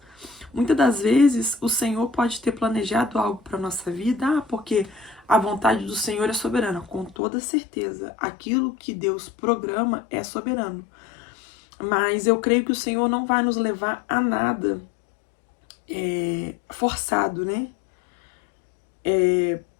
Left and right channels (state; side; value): drops out; right; at 7.2 s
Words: Muitas das vezes o Senhor pode ter planejado algo para nossa vida, porque a vontade do Senhor é soberana. Com toda certeza, aquilo que Deus programa é soberano. Mas eu creio que o Senhor não vai nos levar a nada forçado, né?